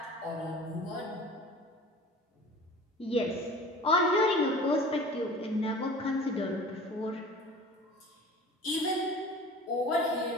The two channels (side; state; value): both; normal; correlation 0.41